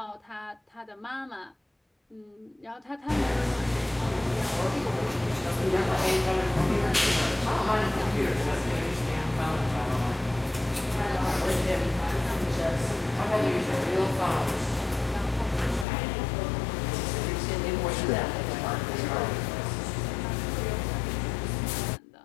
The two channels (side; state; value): right; drops out; at 15.9 s